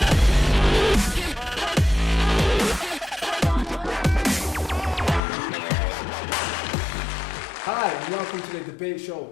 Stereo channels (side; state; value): right; drops out; at 5.2 s